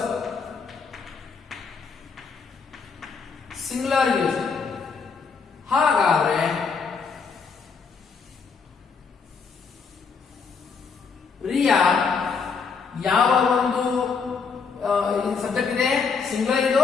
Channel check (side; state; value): right; quieter; 5.4 dB